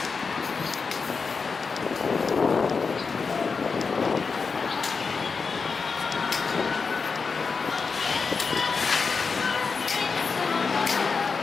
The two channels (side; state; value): right; quieter; 5.0 dB